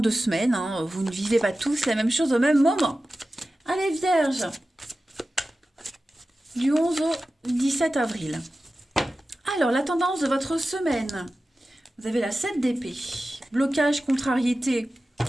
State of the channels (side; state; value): both; normal; correlation 0.94